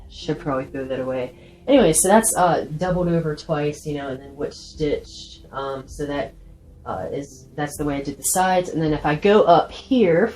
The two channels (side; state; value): both; identical; correlation 1.00